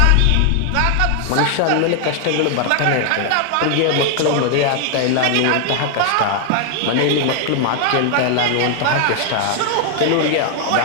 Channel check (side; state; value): both; different; correlation 0.00